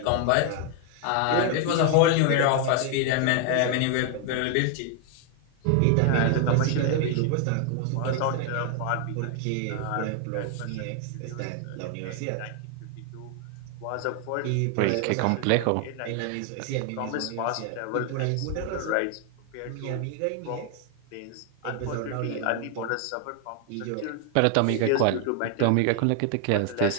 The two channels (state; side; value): different; both; correlation 0.00